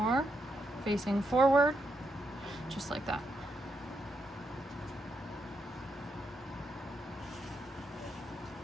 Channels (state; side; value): normal; both; correlation 0.80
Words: facing forward, just like that.